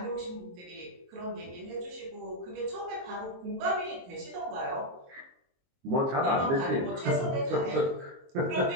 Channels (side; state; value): left; late; 22 ms